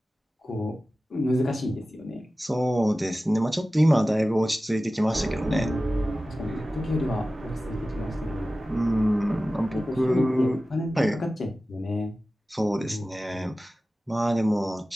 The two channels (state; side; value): normal; both; correlation 0.96